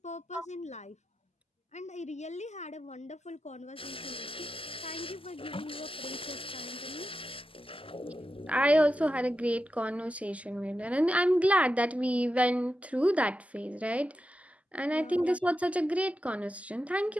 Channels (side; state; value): both; normal; correlation 0.90